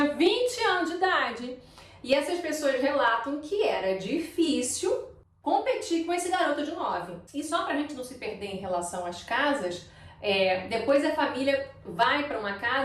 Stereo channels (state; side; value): identical; both; correlation 1.00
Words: 20 anos de idade. E essas pessoas relatam que era difícil competir com esse garoto de 9. E só pra gente não se perder em relação às casas, depois a família vai para uma